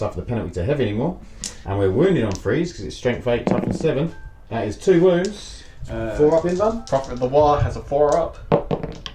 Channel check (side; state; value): both; identical; correlation 1.00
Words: the penalty to heavy anymore, and we're wounded on 3s because it's strength 8, toughness 7. That is 2 wounds. 4 up in done. Prophet of the War has a 4 up.